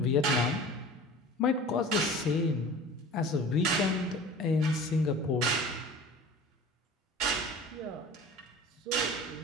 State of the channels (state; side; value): normal; both; correlation 0.40